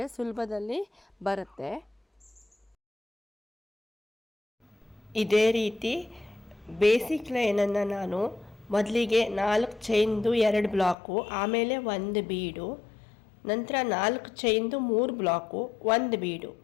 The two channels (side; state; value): right; drops out; at 11.0 s